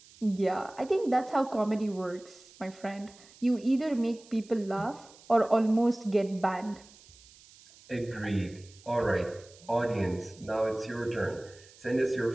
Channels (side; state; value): right; noise; hiss, 24 dB below the sound